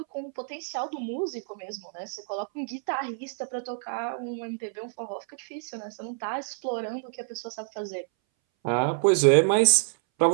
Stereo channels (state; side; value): silent; left; 60 dB below the other